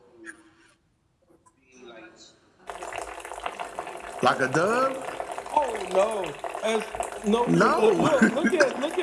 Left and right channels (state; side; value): identical; both; correlation 1.00